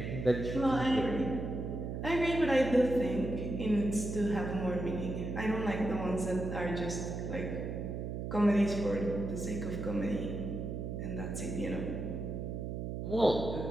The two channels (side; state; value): right; noise; hum, 4 dB below the sound